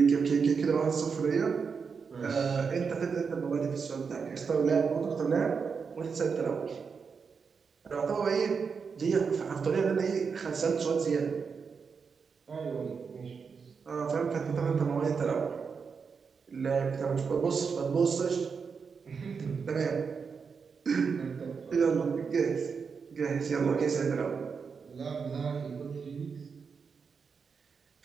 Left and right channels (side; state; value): left; quieter; 5.7 dB